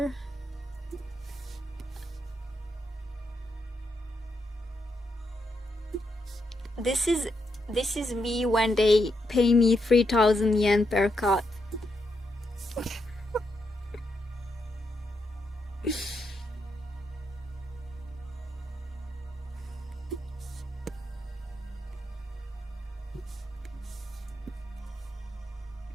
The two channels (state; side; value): normal; both; correlation 0.81